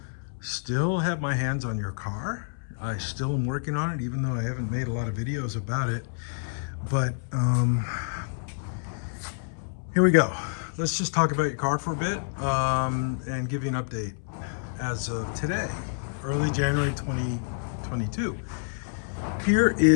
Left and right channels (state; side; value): silent; right; 59 dB below the other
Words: still have my hands on your car. I still am working on it, even though I haven't made a lot of videos about it. But here we go. Let's just talk about your car for a bit and give you an update as of today, early January 2022. Here